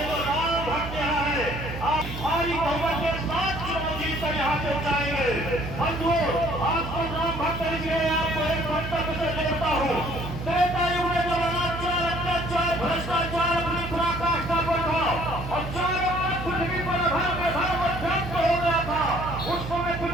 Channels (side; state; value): right; noise; hum, 8 dB below the sound